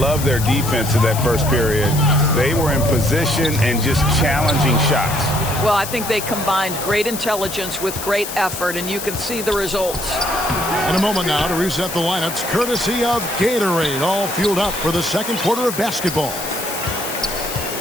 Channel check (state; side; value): noise; left; hiss, 8 dB below the sound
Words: their defense in that first period. They were in position and just challenging shots. Well, I think they combined great intelligence with great effort, and you can see the results. In a moment now to reset the lineups, courtesy of Gatorade, all fueled up for the second quarter of basketball.